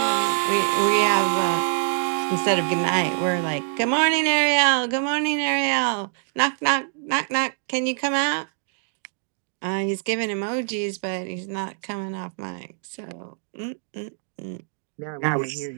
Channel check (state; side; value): silent; left; digital silence